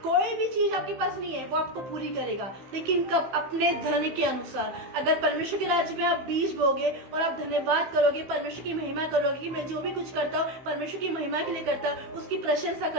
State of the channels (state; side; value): late; left; 15 ms